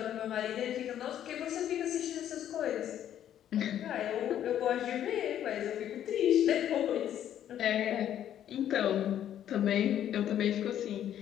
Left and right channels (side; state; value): right; quieter; 10.7 dB